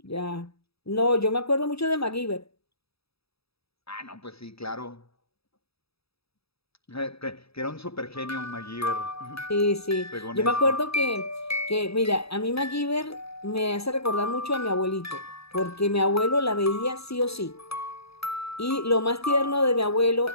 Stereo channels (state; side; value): late; right; 0.77 ms